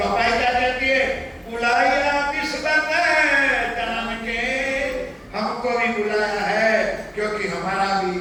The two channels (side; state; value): both; identical; correlation 1.00